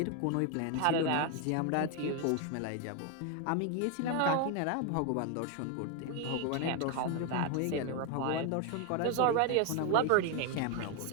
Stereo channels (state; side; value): different; both; correlation 0.01